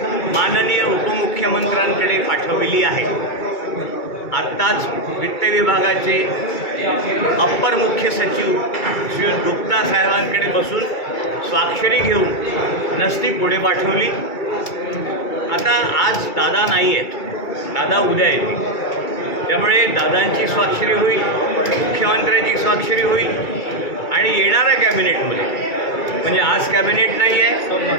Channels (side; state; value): right; late; 2.3 ms